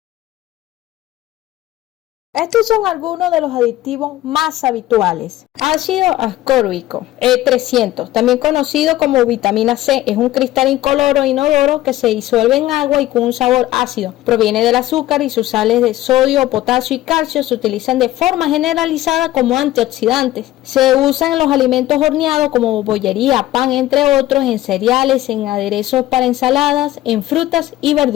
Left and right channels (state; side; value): quieter; right; 15.2 dB